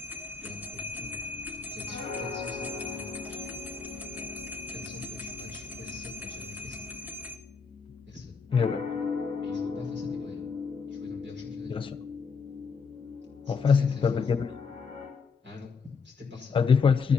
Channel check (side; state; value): right; quieter; 5.3 dB